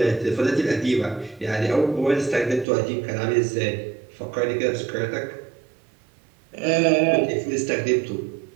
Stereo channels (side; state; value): left; drops out; at 2.7 s